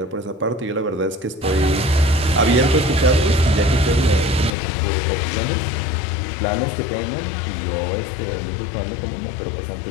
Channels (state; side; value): drops out; right; at 4.5 s